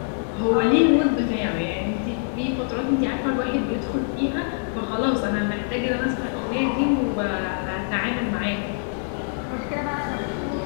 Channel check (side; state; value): right; silent; 62 dB below the other